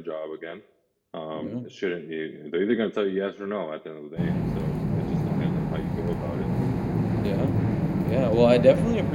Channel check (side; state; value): both; identical; correlation 1.00